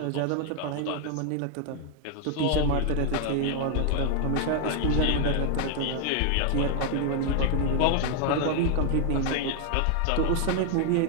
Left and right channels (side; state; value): both; different; correlation 0.00